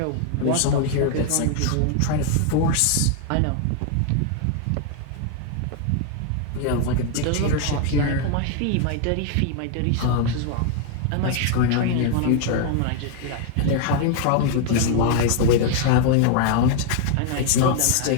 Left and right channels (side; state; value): both; different; correlation 0.00